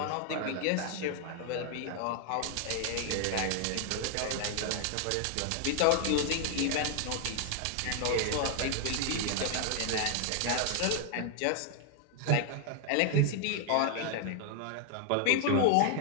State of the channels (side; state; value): both; different; correlation 0.00